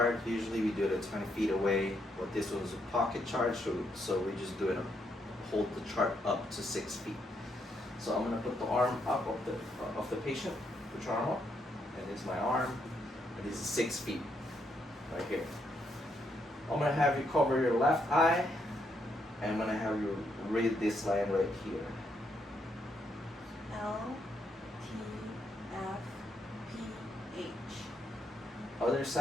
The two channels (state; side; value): normal; both; correlation 0.77